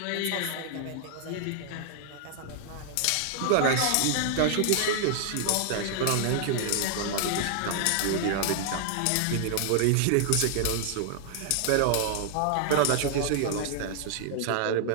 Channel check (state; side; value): different; both; correlation 0.00